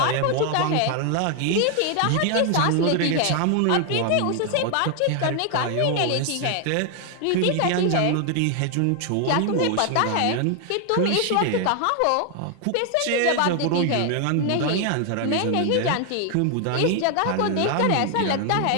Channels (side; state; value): both; different; correlation 0.00